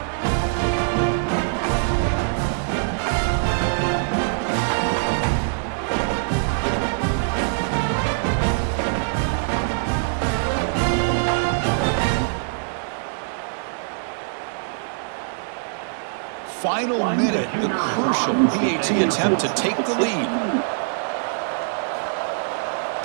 Final minute, the crucial PAT attempt to take the lead.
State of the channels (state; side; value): silent; left; digital silence